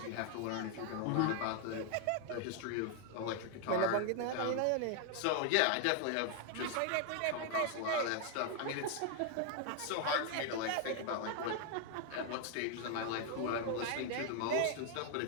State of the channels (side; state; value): both; different; correlation 0.00